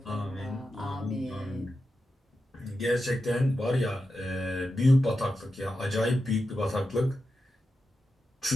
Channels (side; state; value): both; normal; correlation 0.90